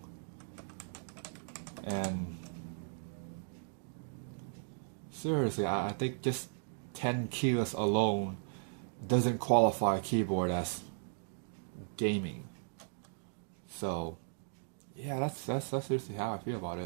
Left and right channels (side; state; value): left; silent; digital silence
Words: And seriously, I think just 10 keyless alone doesn't qualify a keyboard as gaming. So yeah, that's seriously how I feel about